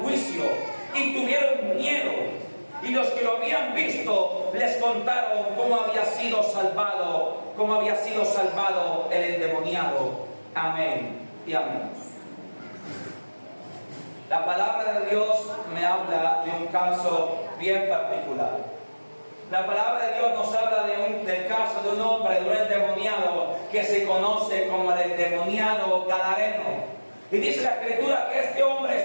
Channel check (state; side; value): inverted; both; correlation -1.00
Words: juicio. Y tuvieron miedo. Y los que lo habían visto les contaron cómo había sido salvado el endemoniado. Amén y amén. La palabra de Dios me habla de un caso bien particular. La palabra de Dios nos habla del caso de un hombre, de un endemoniado que se conoce como el endemoniado gadareno. Y dice la Escritura que este hombre